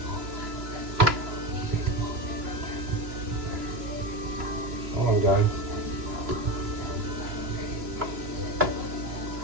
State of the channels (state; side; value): late; left; 2.9 ms